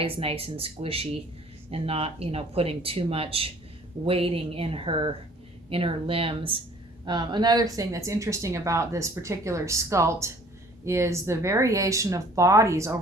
nice and squishy and not, you know, putting too much weighting in her limbs. Another thing that's interesting about this particular sculpt is the variation of bodies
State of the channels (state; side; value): normal; both; correlation 0.54